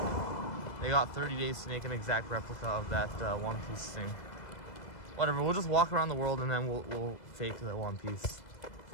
They got 30 days to make an exact replica of that One Piece thing. Whatever, we'll just walk around the world and then we'll fake the One Piece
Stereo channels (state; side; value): late; right; 2.0 ms